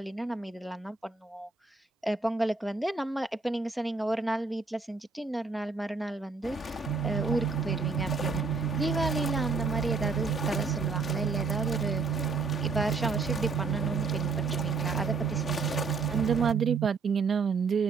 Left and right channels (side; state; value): left; quieter; 4.5 dB